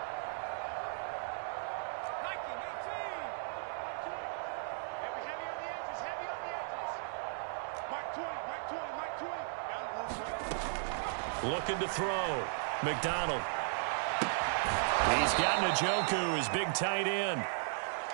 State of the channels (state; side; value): silent; left; digital silence